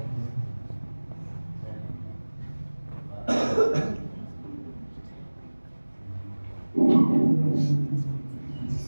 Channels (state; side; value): inverted; both; correlation -1.00